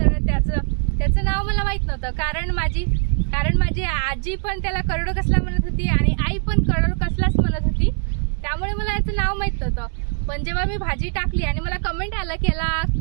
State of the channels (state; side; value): silent; left; 58 dB below the other